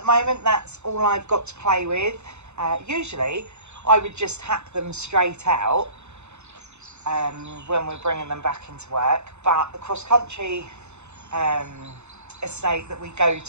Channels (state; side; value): late; left; 0.82 ms